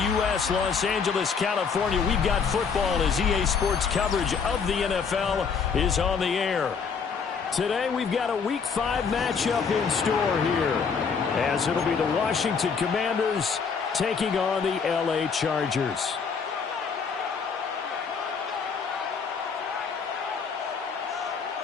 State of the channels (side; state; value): right; quieter; 5.9 dB